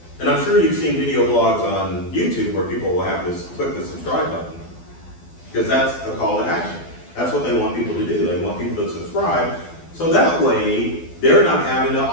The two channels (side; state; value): right; late; 12 ms